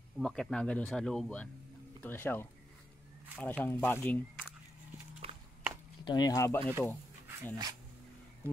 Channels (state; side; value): normal; both; correlation 0.84